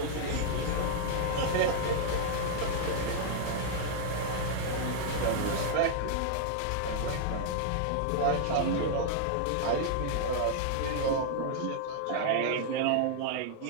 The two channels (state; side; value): different; both; correlation -0.01